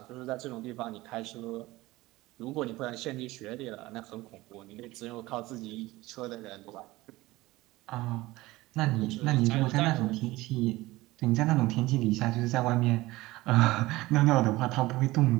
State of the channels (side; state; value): left; quieter; 19.1 dB